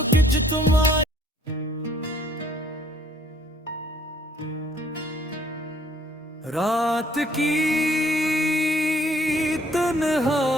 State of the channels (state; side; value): normal; both; correlation 0.62